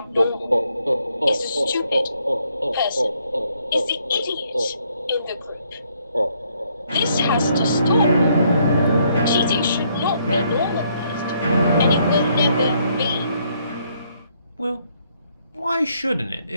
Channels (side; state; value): both; inverted; correlation -0.70